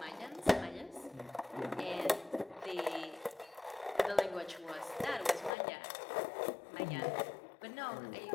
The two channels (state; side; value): drops out; right; at 5.5 s